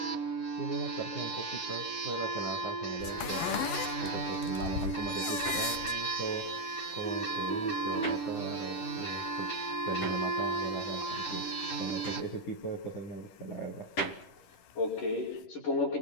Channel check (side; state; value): right; late; 11 ms